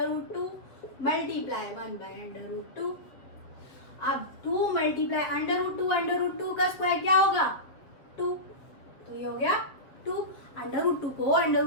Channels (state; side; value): late; right; 7.4 ms